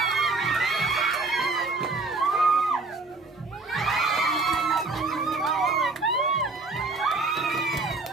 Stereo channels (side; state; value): left; quieter; 3.6 dB